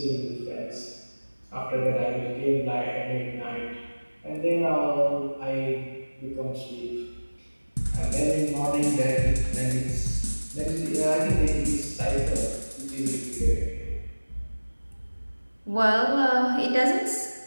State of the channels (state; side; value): inverted; both; correlation -1.00